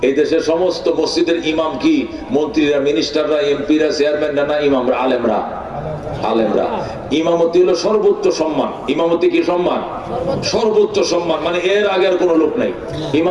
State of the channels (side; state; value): both; identical; correlation 1.00